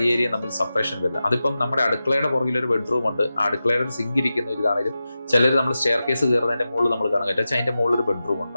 ഏരിയ തമ്മിൽ സെപ്പറേഷൻ വരില്ല. അതിപ്പം നമ്മുടെ അടുക്കളയുടെ പുറകിൽ ഒരു ബെഡ്റൂം ഉണ്ട്, ആ അടുക്കളയുടെ സിങ്ക് ഇരിക്കുന്ന ഒരു ഇതാണെങ്കിലും ചിലർ നമ്മൾ സ്റ്റെയർ കേസ് കയറുന്നതിന്റെ മുകളിൽ നമ്മൾ കാണാൻ പറ്റും, അതിന്റെ മുകളിൽ ഒരു ബെഡ്റൂം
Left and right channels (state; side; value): inverted; both; correlation -0.93